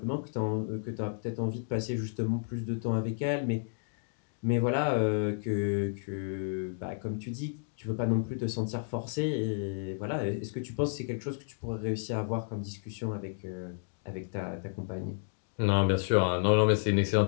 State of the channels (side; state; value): right; silent; digital silence